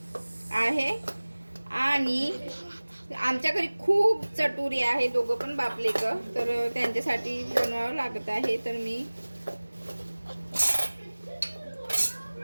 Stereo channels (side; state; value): both; inverted; correlation -1.00